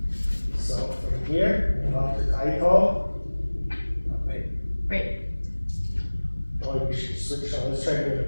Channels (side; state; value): both; inverted; correlation -1.00